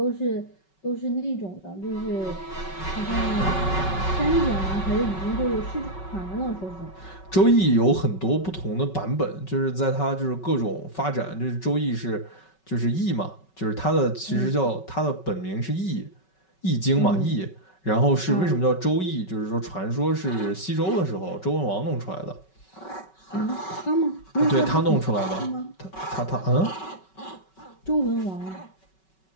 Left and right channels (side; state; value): right; late; 5.3 ms